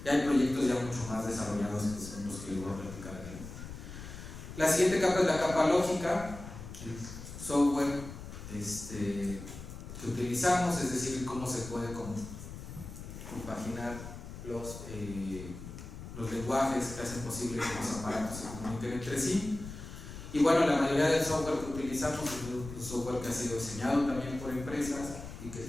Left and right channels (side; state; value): left; noise; rumble, 11 dB below the sound